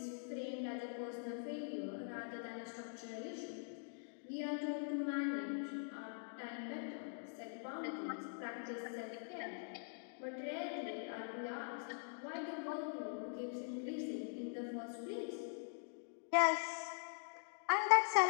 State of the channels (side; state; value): right; silent; digital silence